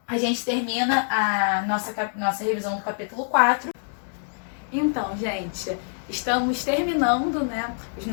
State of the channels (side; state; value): right; silent; digital silence